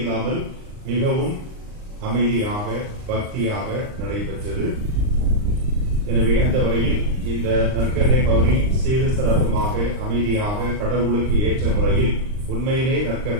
மிகவும் அமைதியாக பக்தியாக நடைபெற்றது. எனவே அந்த வகையில் இந்த நற்கருணை பவனி சீரு சிறப்புமாக அமைதியாக கடவுளுக்கு ஏற்ற முறையில் உண்மையிலே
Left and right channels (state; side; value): late; left; 39 ms